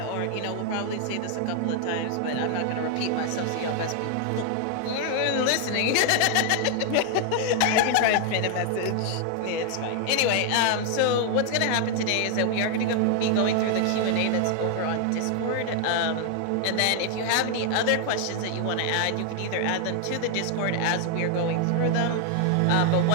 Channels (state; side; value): different; both; correlation 0.00